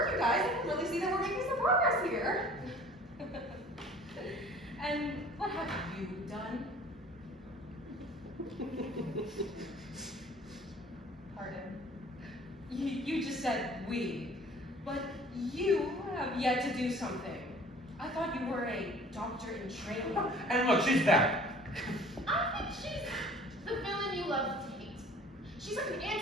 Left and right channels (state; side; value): normal; both; correlation 0.49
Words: you guys. I can really see that we're making some progress here. And what have you done? Pardon. You just said we, but you have yet to do something. I thought you were a doctor in training. And look, she's back. I think she's the villain you love to hate. She's like an